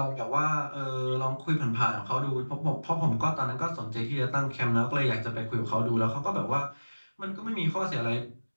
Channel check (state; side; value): inverted; both; correlation -1.00